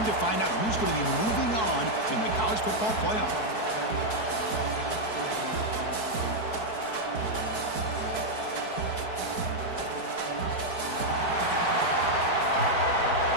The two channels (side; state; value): right; late; 4.6 ms